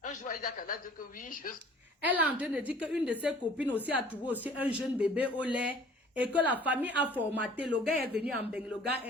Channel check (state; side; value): normal; both; correlation 0.51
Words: Un jour, il a qu'à dire que oui, je... Elle est en train de dire qu'une de ses copines aussi a trouvé aussi un jeune bébé au lait et que la famille a formaté. Le gars est venu en Beng, le gars